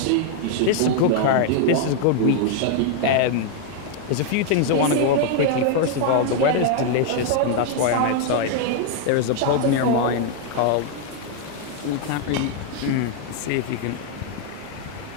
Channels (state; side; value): different; both; correlation 0.00